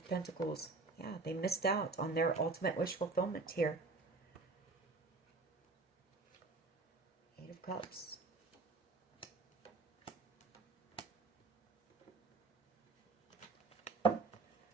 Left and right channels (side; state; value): left; quieter; 3.8 dB